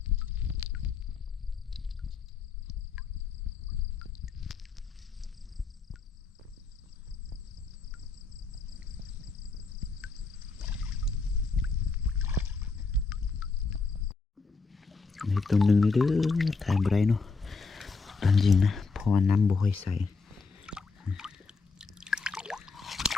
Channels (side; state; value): right; quieter; 4.3 dB